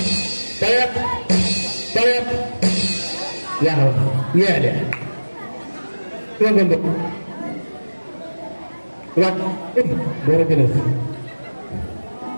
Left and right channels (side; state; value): both; inverted; correlation -1.00